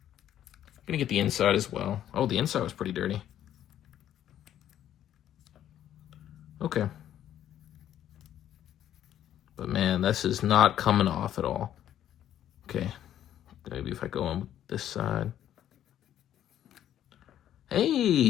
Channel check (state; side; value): quieter; right; 11.2 dB